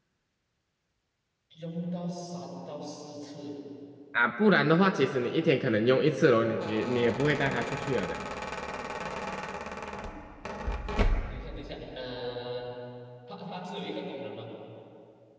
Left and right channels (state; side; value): identical; both; correlation 1.00